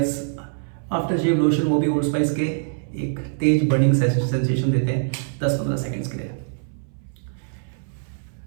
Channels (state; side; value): silent; left; 61 dB below the other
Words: आफ्टर शेव लोशन वो भी ओल्ड स्पाइस के एक तेज बर्निंग सेंसेशन देते हैं 10-15 सेकेंड्स के लिए।